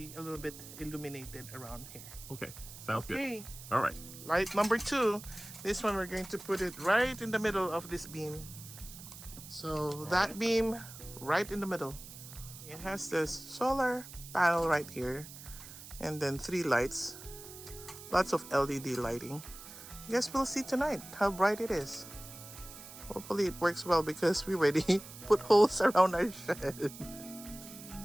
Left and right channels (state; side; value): noise; right; hiss, 15 dB below the sound